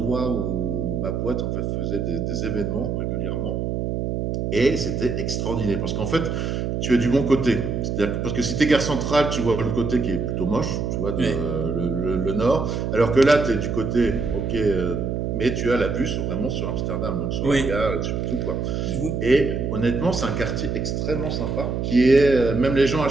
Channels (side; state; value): right; noise; hum, 1 dB below the sound